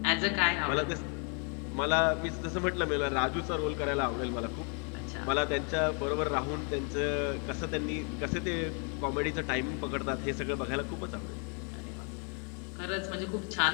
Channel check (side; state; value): right; quieter; 38.5 dB